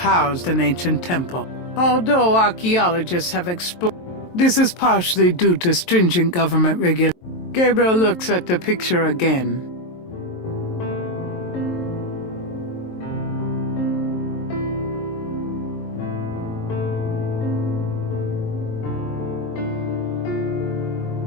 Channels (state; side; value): late; right; 23 ms